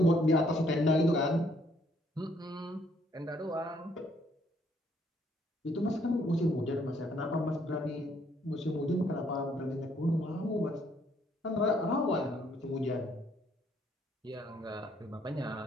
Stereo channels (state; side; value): normal; both; correlation 0.67